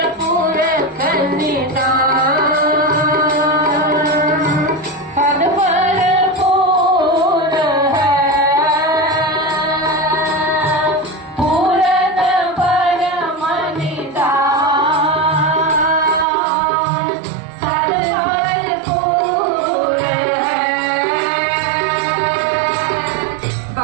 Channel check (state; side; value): drops out; left; at 16.2 s